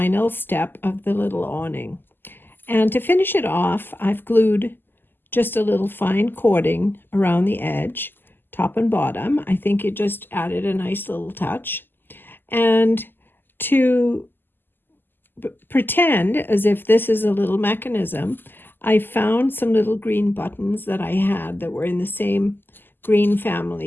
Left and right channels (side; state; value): right; late; 0.094 ms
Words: step of the little awning. And to finish it off, I've glued just a little fine cording around the edge, top and bottom. I think it just added a nice little touch. And to pretend as if this is a little mechanism, I found some little green buttons that I had that were in the same green